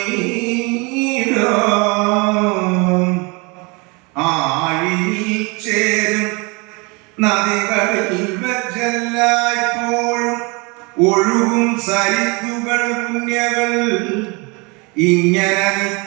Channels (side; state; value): left; quieter; 28.9 dB